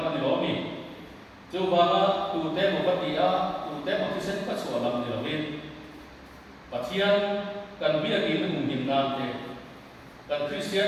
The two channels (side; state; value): both; identical; correlation 1.00